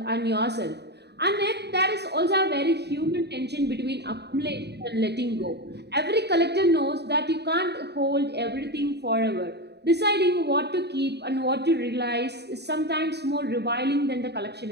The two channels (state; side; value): late; left; 0.49 ms